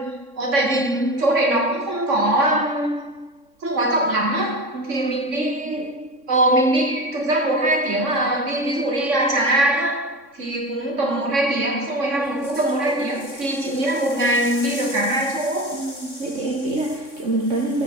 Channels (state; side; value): late; left; 3.6 ms